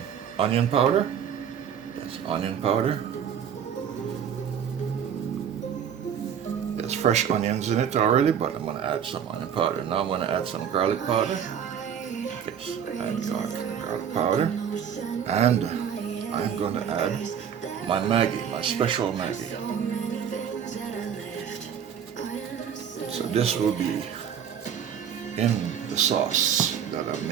onion powder. Yes, onion powder. There's fresh onions in it already, but I'm going to add some onion powder. Now I'm going to add some garlic powder. Yes, and garlic powder. And I'm going to add my Maggi, my special Maggi. So this will be in the sauce that I'm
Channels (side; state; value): left; quieter; 8.3 dB